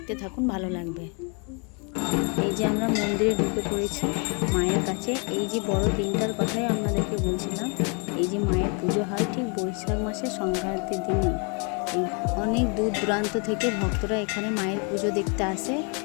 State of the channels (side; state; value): right; quieter; 36.0 dB